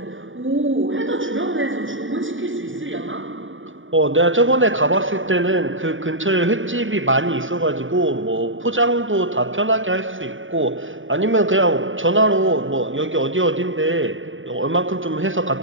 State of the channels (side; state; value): left; late; 0.57 ms